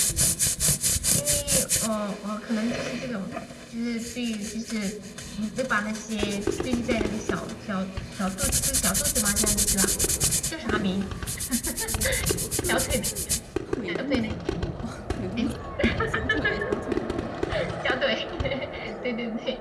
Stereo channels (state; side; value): identical; both; correlation 1.00